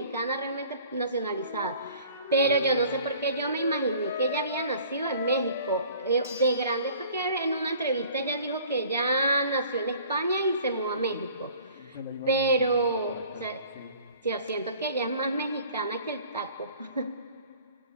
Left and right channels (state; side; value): inverted; both; correlation -0.51